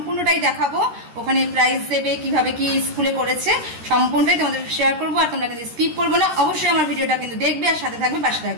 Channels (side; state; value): left; late; 13 ms